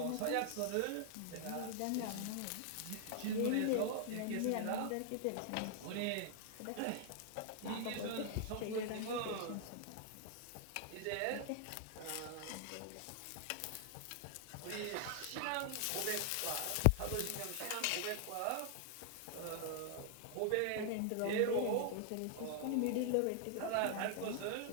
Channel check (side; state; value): both; different; correlation 0.00